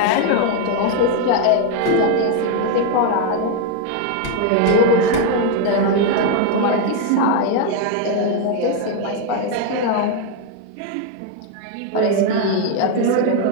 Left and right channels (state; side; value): different; both; correlation 0.01